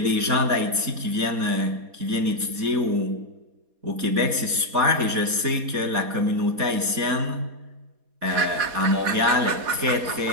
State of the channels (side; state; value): left; late; 4.2 ms